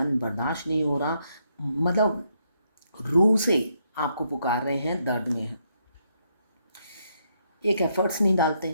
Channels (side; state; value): both; inverted; correlation -0.76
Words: बर्दाश्त नहीं हो रहा, मतलब रूह से आपको पुकार रहे हैं, दर्द में हैं। एक एफ़र्ट्स नहीं